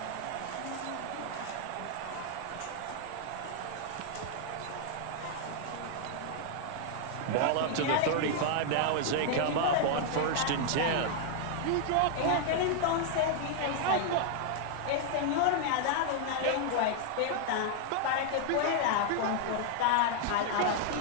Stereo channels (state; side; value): different; both; correlation 0.00